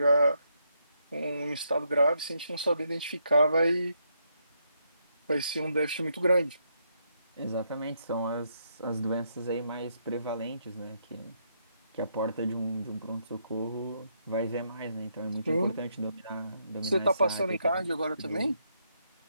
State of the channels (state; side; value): inverted; both; correlation -0.77